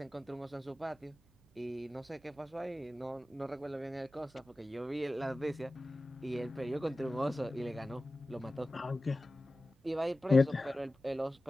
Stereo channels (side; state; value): right; noise; hum, 30 dB below the sound